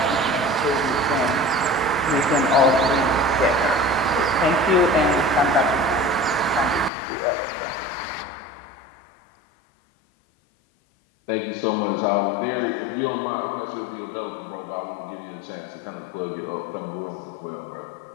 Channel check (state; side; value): drops out; right; at 6.9 s